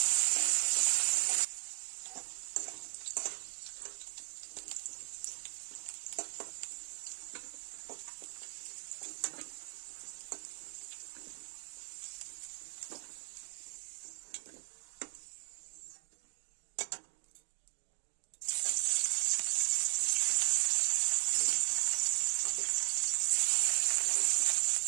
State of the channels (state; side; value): silent; left; digital silence